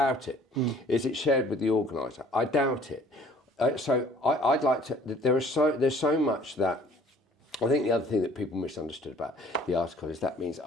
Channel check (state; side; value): normal; both; correlation 0.54